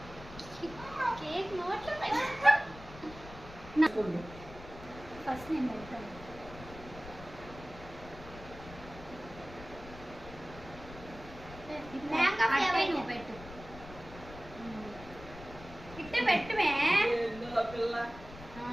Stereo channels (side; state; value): left; noise; rumble, 15 dB below the sound